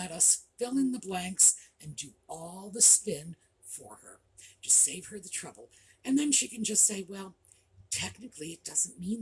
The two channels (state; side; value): identical; both; correlation 1.00